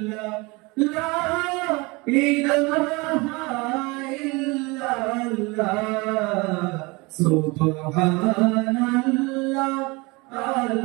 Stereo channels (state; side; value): quieter; left; 25.7 dB